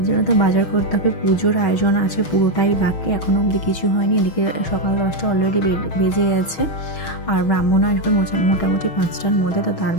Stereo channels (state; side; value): late; right; 6.3 ms